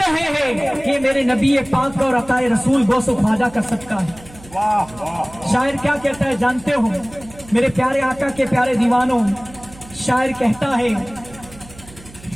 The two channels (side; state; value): right; noise; hum, 21 dB below the sound